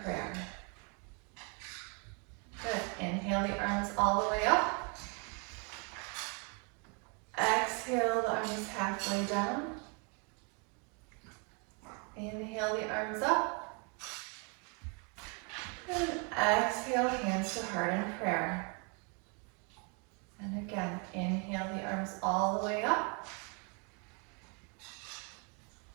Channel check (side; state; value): left; quieter; 35.3 dB